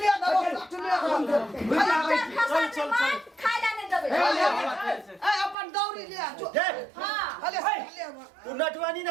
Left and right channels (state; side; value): drops out; left; at 5.6 s